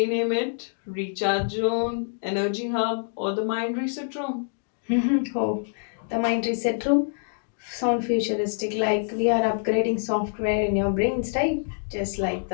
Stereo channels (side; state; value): right; silent; digital silence